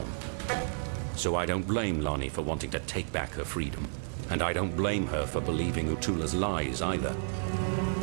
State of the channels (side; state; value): left; silent; digital silence